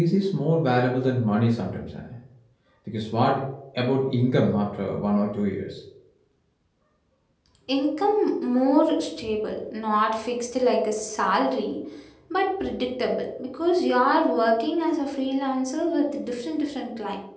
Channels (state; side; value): identical; both; correlation 1.00